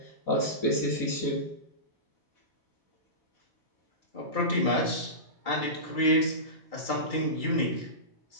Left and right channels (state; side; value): late; right; 2.3 ms